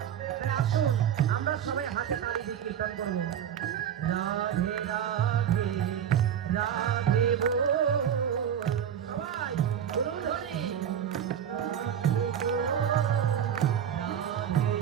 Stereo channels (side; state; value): left; quieter; 9.1 dB